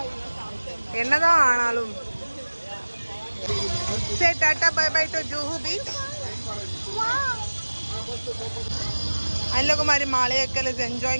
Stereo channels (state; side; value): inverted; both; correlation -1.00